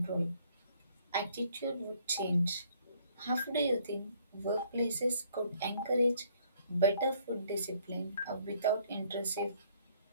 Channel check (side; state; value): both; inverted; correlation -0.64